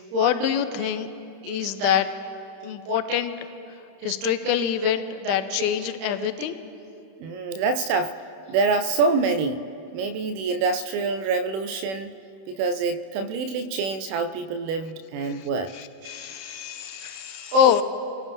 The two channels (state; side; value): late; left; 31 ms